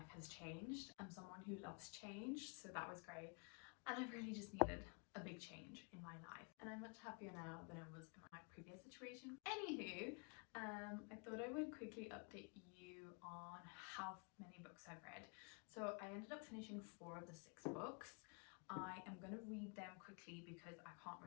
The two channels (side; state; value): right; quieter; 35.7 dB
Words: has changed. I'm someone who loves change, so that was great. And I really just needed a big change in my life, and I'm much happier now than I was in my previous situation. Anywho, I thought I would quickly update you on how many books I've read. So I ended up finishing 4 of the 6 books. I am going to read them quickly because I can't